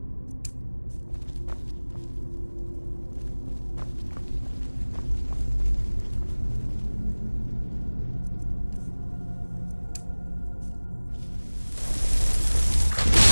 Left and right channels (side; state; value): both; inverted; correlation -1.00